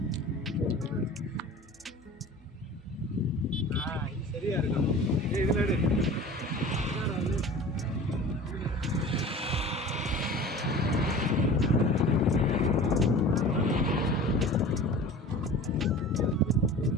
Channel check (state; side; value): normal; both; correlation 0.40